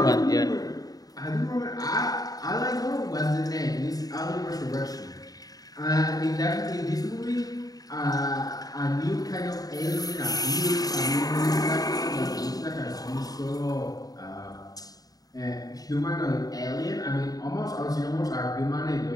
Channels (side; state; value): right; late; 0.18 ms